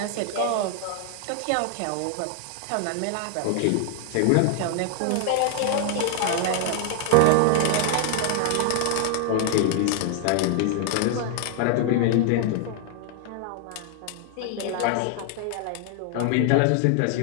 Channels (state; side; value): different; both; correlation 0.00